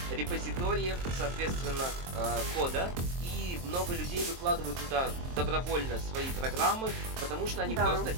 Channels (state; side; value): late; left; 23 ms